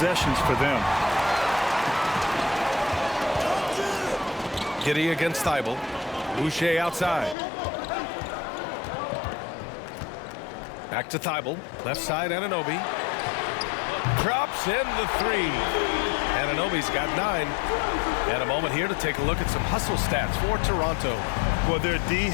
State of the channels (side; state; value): right; drops out; at 7.4 s